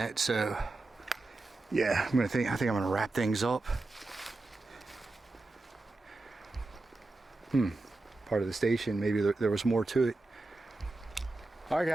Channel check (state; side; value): quieter; left; 3.1 dB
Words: so yeah, I think I'm gonna wrap things up. Part of the station, maybe there was more to it. All right,